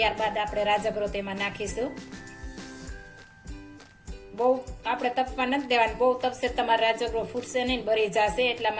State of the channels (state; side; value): identical; both; correlation 1.00